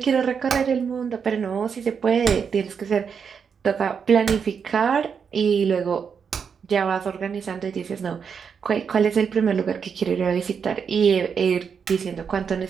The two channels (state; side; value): quieter; left; 6.6 dB